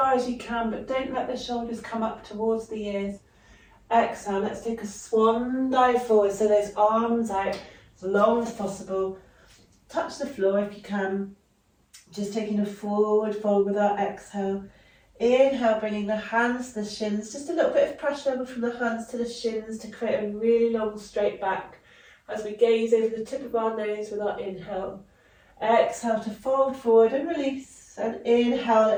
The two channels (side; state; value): both; identical; correlation 1.00